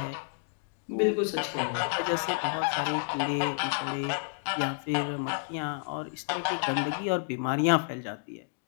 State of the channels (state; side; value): silent; right; digital silence